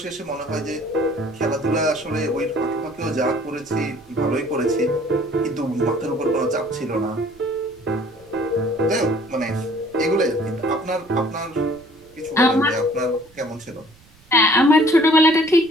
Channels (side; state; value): right; noise; rumble, 27 dB below the sound